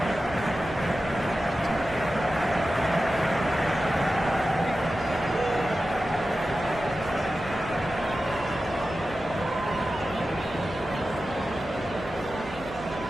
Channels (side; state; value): left; noise; hum, 17 dB below the sound